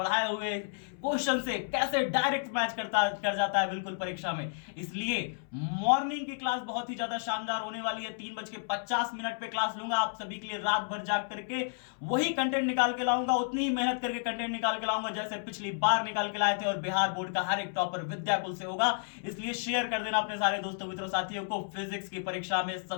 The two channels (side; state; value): right; silent; 57 dB below the other